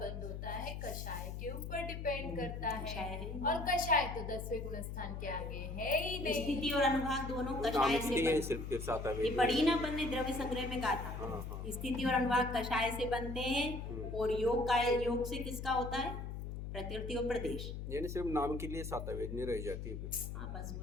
होता है कषाय के ऊपर डिपेंड करता कषाय है। है। और कषाय तो 10वें गुणस्थान के आगे है ही नहीं। स्थिति और अनुभाग दोनों कषाय नामिक से है बनते। सिर्फ के सातवें ये वेदनी। पढ़ी ना अपन ने द्रव्य संग्रह में कहा था। हाँ। स्थिति और अनुभाग कषाय से बनते हैं। और योग से किसका होता है? प्रकृति और प्रदेश। यानी सिर्फ नाम के लिए सातवें वेदनी रह जाती है फिर। हाँ, बस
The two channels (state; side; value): noise; left; hum, 6 dB below the sound